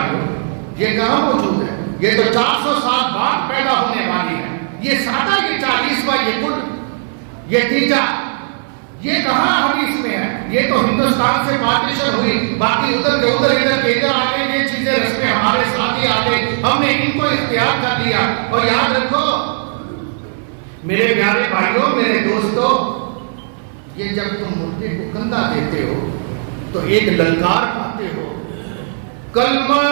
یہ کہاں موجود ہے؟ یہ تو 400 سال بعد پیدا ہونے والی ہے، یہ سادہ یہ 40واں یہ کل یہ تیجا یہ کہاں حدیث میں ہے؟ یہ تو ہندوستان سے پارٹیشن ہوئی، باقی ادھر کے ادھر، ادھر کے ادھر آ گئے، یہ چیزیں رسمیں ہمارے ساتھ ہی آ گئی، ہم نے ان کو اختیار کر لیا۔ اور یاد رکھو میرے پیارے بھائیوں، میرے دوستوں، یہ جب تم مردے کو کندھا دیتے ہو تو ایک للکار پاتے ہو، کلمہ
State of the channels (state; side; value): silent; left; 60 dB below the other